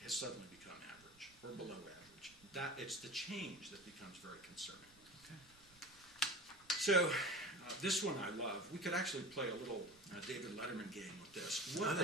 has suddenly become average or below average. It's the change that becomes very concerning. Okay. So this one I love. We could actually play a little David Letterman game with this. What are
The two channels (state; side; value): noise; right; rumble, 27 dB below the sound